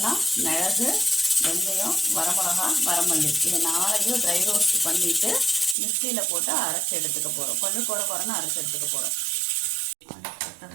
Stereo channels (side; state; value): left; drops out; at 5.8 s